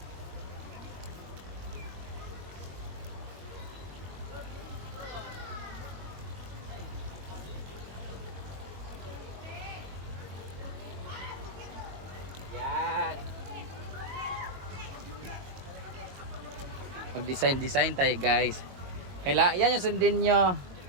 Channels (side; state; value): left; late; 22 ms